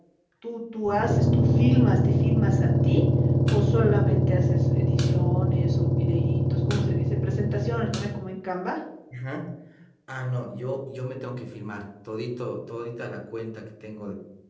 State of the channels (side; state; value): both; identical; correlation 1.00